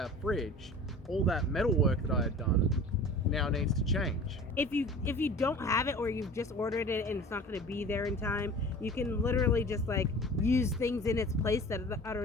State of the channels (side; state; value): both; normal; correlation 0.41